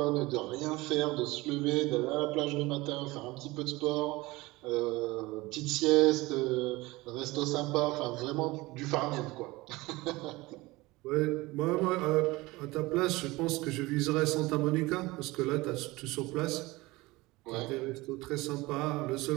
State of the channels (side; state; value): left; quieter; 21.1 dB